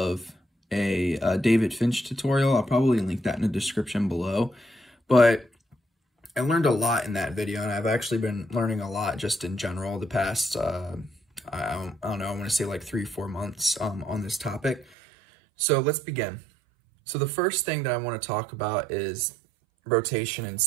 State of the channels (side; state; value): left; drops out; at 14.9 s